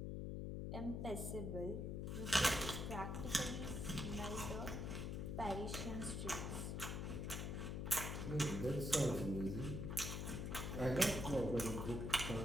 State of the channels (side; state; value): left; noise; hum, 2 dB below the sound